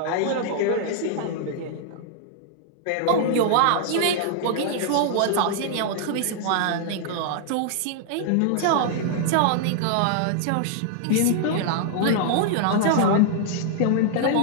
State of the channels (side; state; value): both; different; correlation -0.01